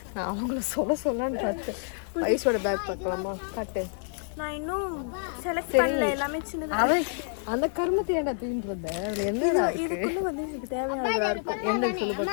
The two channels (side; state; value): right; silent; 59 dB below the other